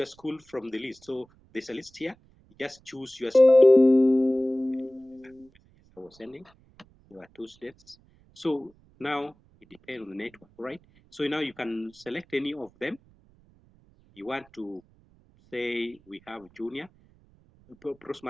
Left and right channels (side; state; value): right; noise; rumble, 30 dB below the sound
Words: school from the list. So there's a list here. Just choose your school. I was sending. There are two students. So now it depends on the network, right? So now you can select any of them. You want to say we have junior,